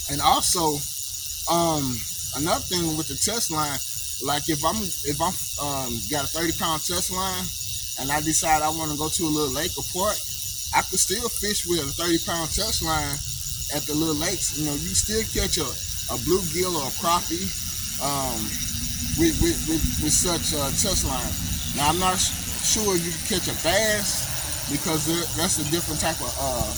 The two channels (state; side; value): identical; both; correlation 1.00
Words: And also, another thing with the test line, like if I'm got a 30-pound test line, and I decide I want to go to a little lake or park, I could still fish with a 30-pound test line at the little lakes. You still catch a bluegill or a crappie with such a test line. Now I'm not sure you can catch a bass, because that's a different type of